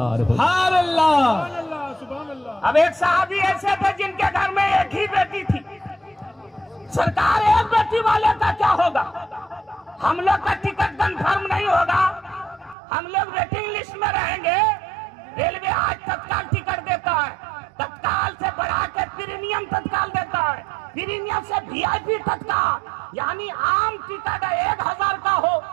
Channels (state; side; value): drops out; left; at 12.8 s